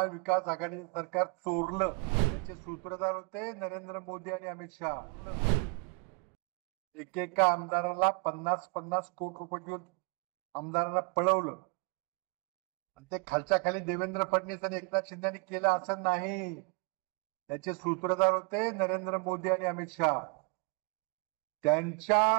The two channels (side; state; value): left; quieter; 32.7 dB